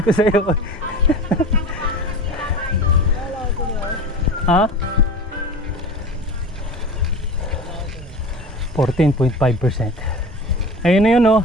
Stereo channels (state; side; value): normal; both; correlation 0.34